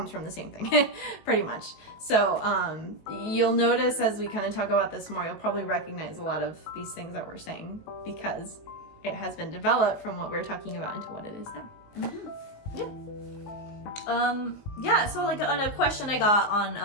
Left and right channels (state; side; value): late; right; 19 ms